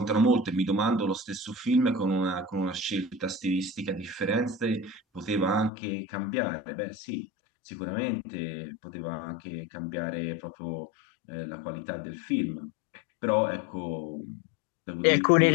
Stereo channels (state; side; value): drops out; right; at 5.7 s